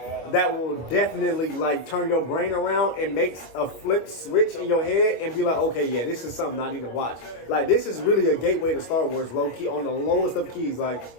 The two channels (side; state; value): right; late; 25 ms